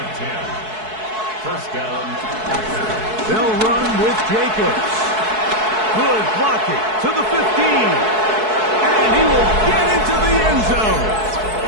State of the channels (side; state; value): left; late; 4.6 ms